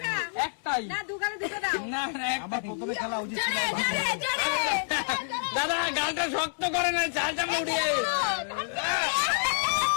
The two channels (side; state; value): right; silent; 59 dB below the other